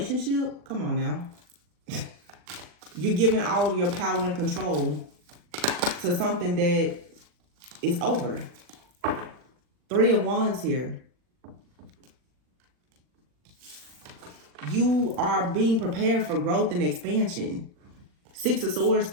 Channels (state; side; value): late; left; 40 ms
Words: Come on now. You're giving all of your power and control to something that is over. Three of Wands here. You are being prepared for growth and expansion. Six of Swords,